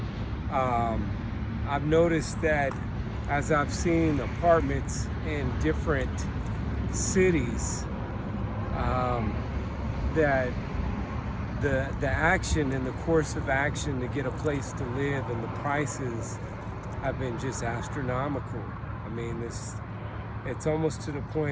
um, I've noticed that as I've seen apartments in different cities, that the action and the course of action to get a place to live and the prices have been just astronomical. I mean, it's almost to the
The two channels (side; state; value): both; identical; correlation 1.00